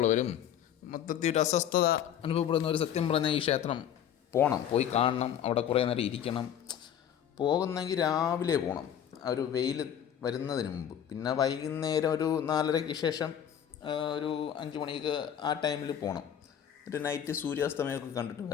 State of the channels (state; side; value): quieter; right; 9.5 dB